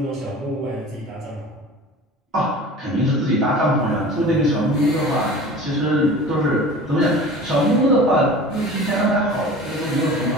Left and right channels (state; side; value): normal; both; correlation 0.39